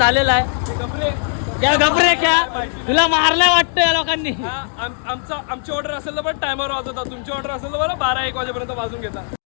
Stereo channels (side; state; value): right; silent; digital silence